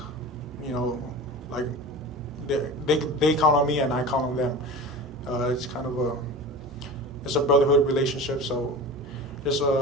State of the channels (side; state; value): both; normal; correlation 0.33